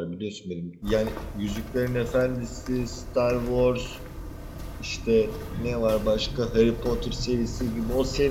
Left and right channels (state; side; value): identical; both; correlation 1.00